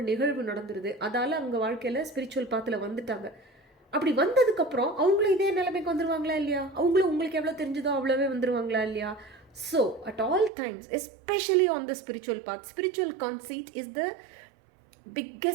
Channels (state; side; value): drops out; left; at 10.5 s